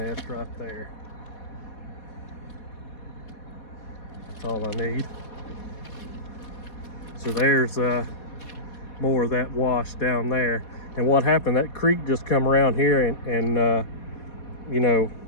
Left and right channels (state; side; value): late; right; 4.2 ms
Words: right there. That's all I need. So there's more of that wash down there. And what happened, that creek just come around here and you know,